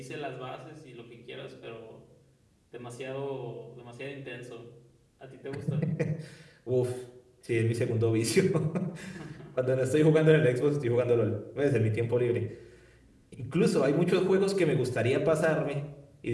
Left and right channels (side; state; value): both; identical; correlation 1.00